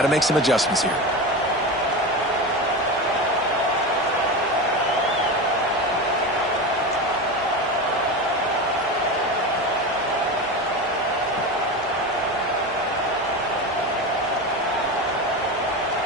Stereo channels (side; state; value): both; normal; correlation 0.23